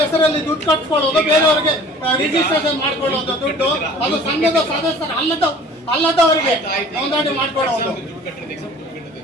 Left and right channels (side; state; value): both; normal; correlation 0.47